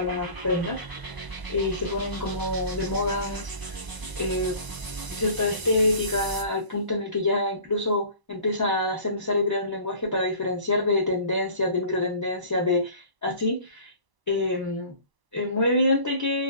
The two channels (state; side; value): late; left; 1.0 ms